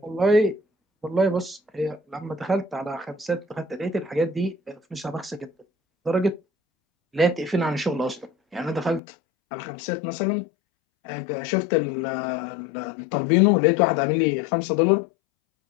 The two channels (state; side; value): drops out; right; at 9.0 s